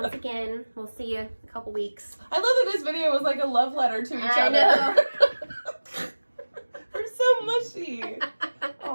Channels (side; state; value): both; inverted; correlation -1.00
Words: again, we'll see you in a couple weeks. I love that this video was like a love letter to each I other. know. We're so mushy.